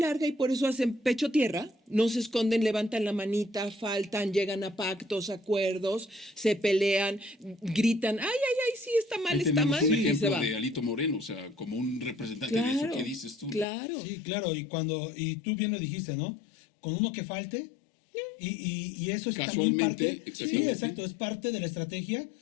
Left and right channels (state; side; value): drops out; right; at 13.7 s